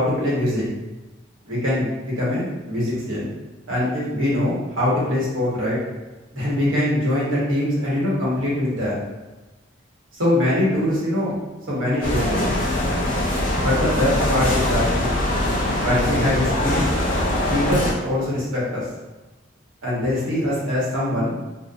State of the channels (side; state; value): both; normal; correlation 0.51